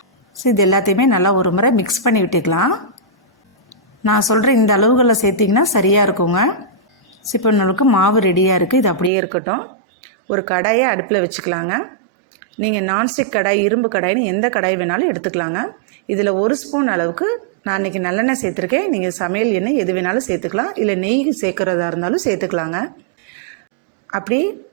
ஸோ இது எல்லாத்தையுமே நல்லா ஒரு முறை மிக்ஸ் பண்ணி விட்டுக்கலாம். நான் சொல்கிற இந்த அளவுகளில் சேர்த்திங்கன்னா சரியாக இருக்குங்க. ஸோ இப்போ நம்மளுக்கு மாவு ரெடியாக இருக்குது. இது அப்படியே இருக்கட்டும். ஒரு கடாயை அடுப்பில் வச்சுக்கலாங்க. நீங்கள் நான்ஸ்டிக் கடாய், இரும்பு கடாயின்னு எந்த கடாய் வேணாலும் எடுத்துக்கலாங்க. இதில் 1 ஸ்பூன் அளவுக்கு நான் இன்றைக்கி நல்லெண்ணெய் சேர்த்துருக்கேன். நீங்கள் சமையல் எண்ணெய் எது வேணாலும் சேர்த்துக்கலாம், இல்லை நெய் சேர்க்குறதா இருந்தாலும் சேர்த்துக்கலாங்க. அப்படி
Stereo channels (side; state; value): left; drops out; at 9.1 s